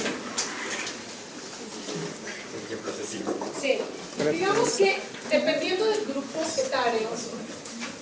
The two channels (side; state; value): both; identical; correlation 1.00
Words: Sí, digamos que dependiendo del grupo etario